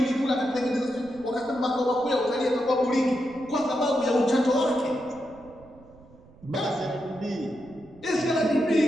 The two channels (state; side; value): noise; right; rumble, 24 dB below the sound